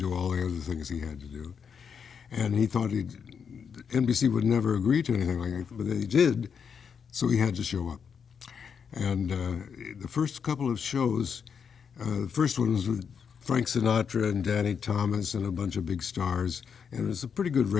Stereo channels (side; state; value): right; quieter; 6.8 dB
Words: all the other things he had to do. And he thought NBC would never agree to anything like that, but they did, so he had to show up. And the first couple of shows, the first one was with Frank Sinatra and Danny Thomas and a bunch of big stars, and it was a pretty good